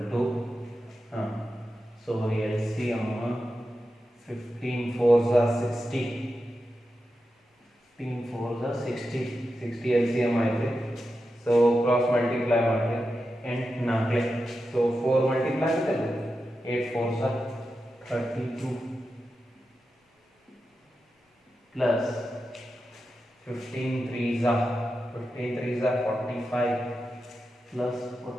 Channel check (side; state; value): both; normal; correlation 0.90